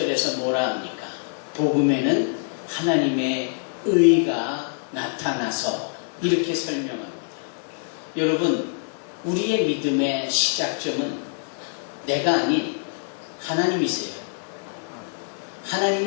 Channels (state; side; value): silent; right; 62 dB below the other